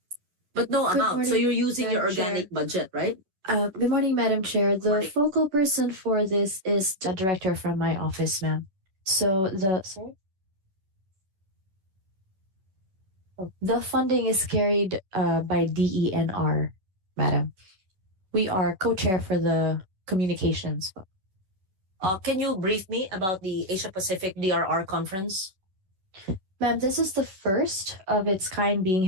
But no Good amount. So morning, you're using your Madam Chair. organic budget, right? Good morning, Madam Chair. The Morning. focal person for this is the director from my office, ma'am. So the funding is carried by DENR, madam. We are co-chair for the communications. Can you brief me about the Asia Pacific DRR conference? Ma'am, this is the first of its kind being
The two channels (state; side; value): late; left; 11 ms